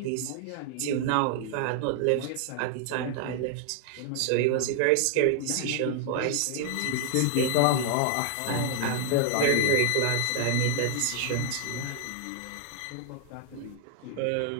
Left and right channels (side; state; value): both; different; correlation 0.00